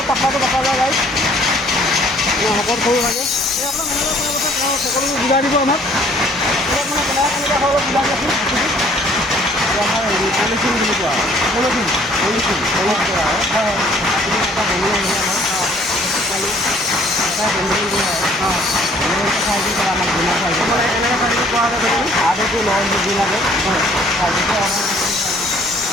পাতলাটো পকা যায় গাইছ, শকত সৰু লাগে। এই আপোনাৰ সকলোবোৰ বুজাই দিব আমাক, ইয়াত মানে কেনেকৈ হয় অলপ বুজাই দিয়কচোন। আমাৰ হেৰি পলিথিন বুলি কোৱা হয়, পলিথিন অলপ কৰা হয়, এটা বনোৱা হয় আমাৰ এনেকৈ চাইজ কৰা হয় আগতো লয় বুজি লাগে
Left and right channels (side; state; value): both; normal; correlation 0.58